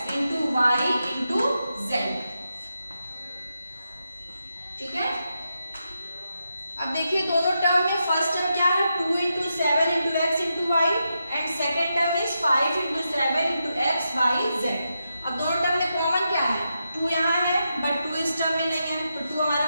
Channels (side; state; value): both; inverted; correlation -0.86